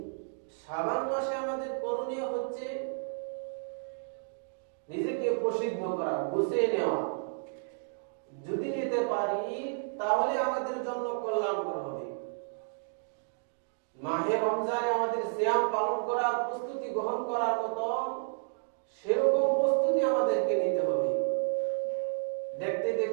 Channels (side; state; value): left; silent; digital silence